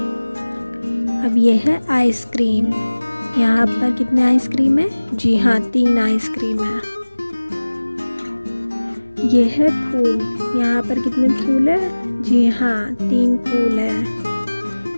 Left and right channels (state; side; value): inverted; both; correlation -1.00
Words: अब ये है आइसक्रीम। यहाँ पर कितने आइसक्रीम है? जी हाँ, 3 आइसक्रीम है। ये है फूल। यहाँ पर कितने फूल है? जी हाँ, 3 फूल है।